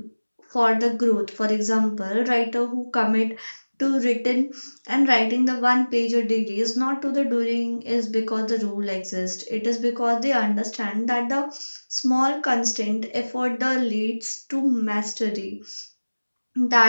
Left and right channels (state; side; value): inverted; both; correlation -1.00